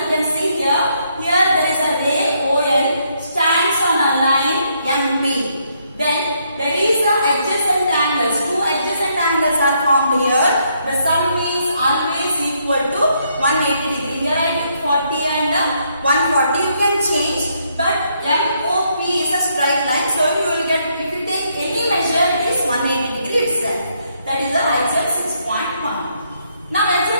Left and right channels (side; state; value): both; inverted; correlation -0.74